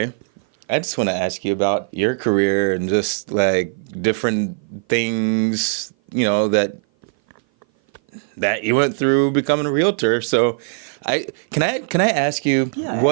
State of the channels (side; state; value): left; silent; 57 dB below the other